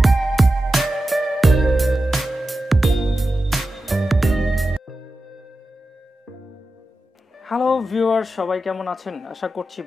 viewers, সবাই কেমন আছেন? আশা করছি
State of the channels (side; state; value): both; normal; correlation 0.92